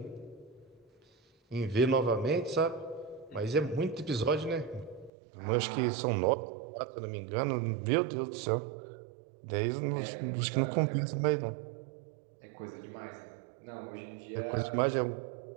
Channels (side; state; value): left; drops out; at 5.1 s